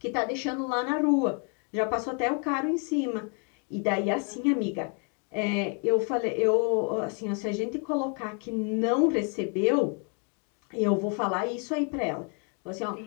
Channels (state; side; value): quieter; right; 38.4 dB